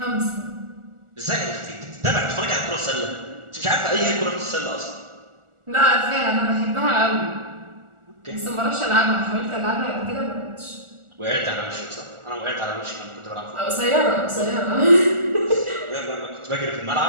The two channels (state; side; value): late; left; 1.4 ms